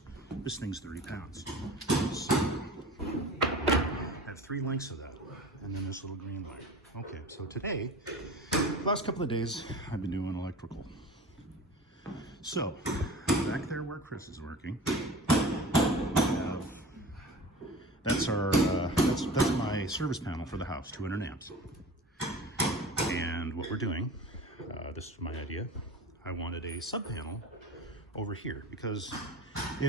this thing's 30 pounds. So, I have 3 lengths of that, and then this little green wire. Okay, so today, the last couple of days, I've been doing electrical. So, back there where Chris is working, that's my service panel for the house, 200 amps. And what we're doing, this is my idea, I wanted a sub panel over here, because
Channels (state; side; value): normal; both; correlation 0.37